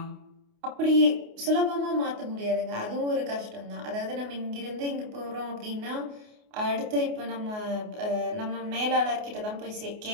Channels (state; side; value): late; left; 28 ms